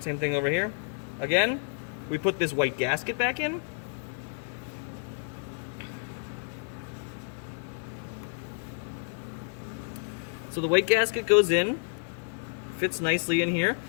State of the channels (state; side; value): silent; right; 58 dB below the other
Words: same thing over here. Again, we put this white gasket back in. So the white gasket goes in, fits nicely in here.